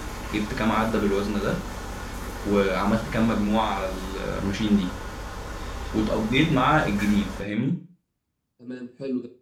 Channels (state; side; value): identical; both; correlation 1.00